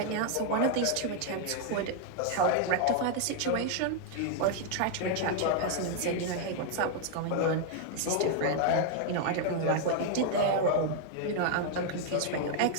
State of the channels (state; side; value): different; both; correlation 0.00